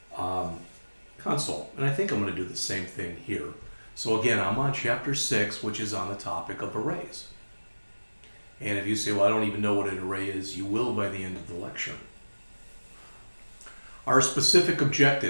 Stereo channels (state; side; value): inverted; both; correlation -1.00